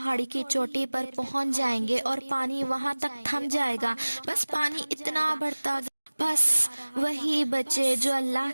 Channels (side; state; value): both; inverted; correlation -1.00